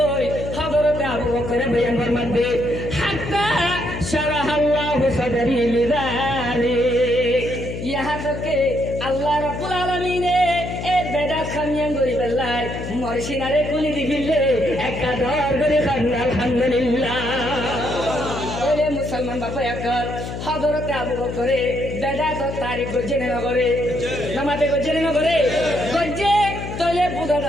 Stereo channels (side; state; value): left; noise; hum, 7 dB below the sound